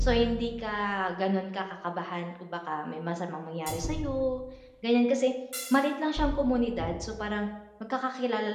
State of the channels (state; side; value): identical; both; correlation 1.00